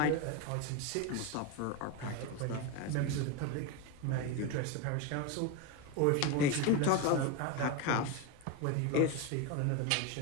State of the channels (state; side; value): different; both; correlation 0.03